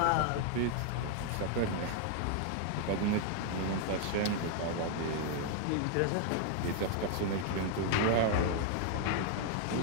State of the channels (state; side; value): different; both; correlation 0.00